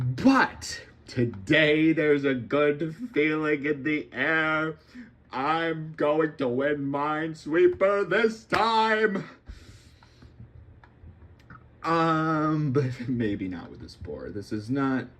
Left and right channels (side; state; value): both; identical; correlation 1.00